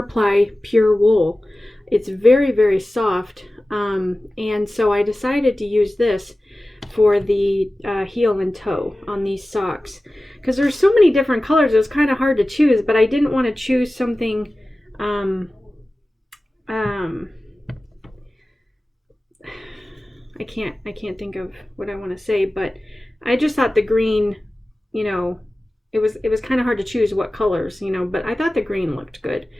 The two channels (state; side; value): normal; both; correlation 0.96